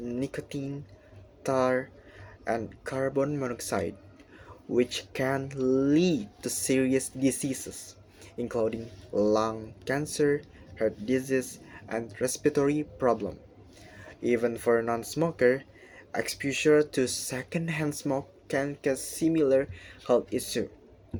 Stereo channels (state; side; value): identical; both; correlation 1.00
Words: tar, and carbon monoxide, which can lead to serious diseases, including lung cancer, heart disease, and respiratory problems. Even for a non-smoker, exposure to secondhand smoke can cause similar health issues.